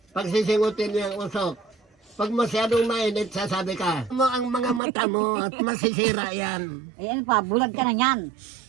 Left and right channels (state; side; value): drops out; left; at 4.8 s